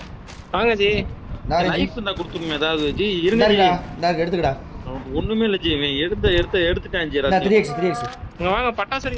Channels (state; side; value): identical; both; correlation 1.00